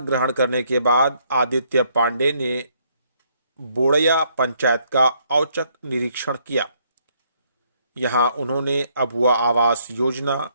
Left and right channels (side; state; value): both; inverted; correlation -0.69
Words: करने के बाद आदित्य पांडे ने बोड़या पंचायत का औचक निरीक्षण किया। यहां उन्होंने अबुआ आवास योजना,